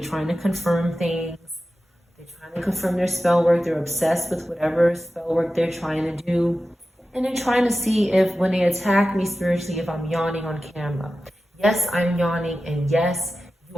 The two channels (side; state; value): both; normal; correlation 0.93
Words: to confirm things. They're trying to confirm their spell work. They're obsessed with whatever spell work they're trying to do. And they're trying to see if when they attack me spiritually, if I'm yawning on camera. Yes, I'm yawning. And yes,